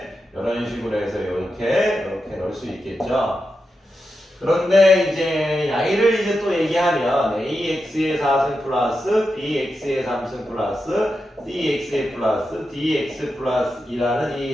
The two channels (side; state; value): both; normal; correlation 0.88